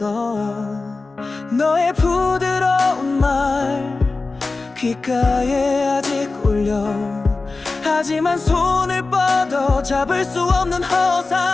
너의 부드러운 말 귓가에 아직 울려. 하지만 손을 뻗어 잡을 수 없는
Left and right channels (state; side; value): quieter; right; 3.7 dB